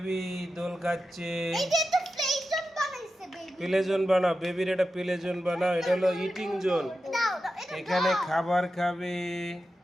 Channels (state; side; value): normal; both; correlation 0.91